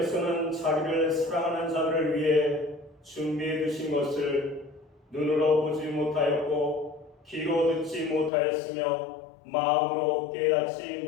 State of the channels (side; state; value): right; drops out; at 8.3 s